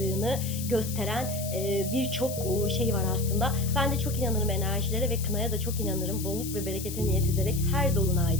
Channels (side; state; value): left; noise; hiss, 9 dB below the sound